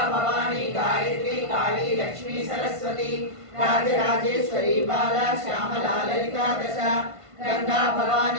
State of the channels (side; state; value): left; late; 1.5 ms